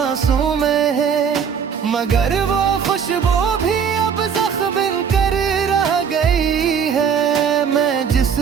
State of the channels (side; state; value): left; quieter; 7.0 dB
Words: में है, मगर वो खुशबू भी अब जख्म बनकर रह गई है। मैं जिस